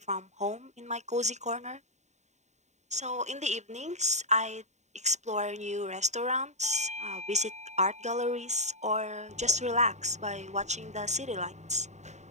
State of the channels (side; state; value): left; late; 0.33 ms